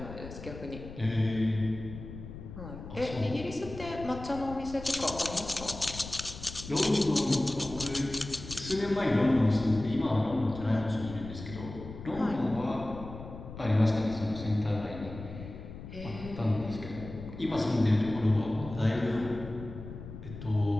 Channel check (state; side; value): noise; left; rumble, 12 dB below the sound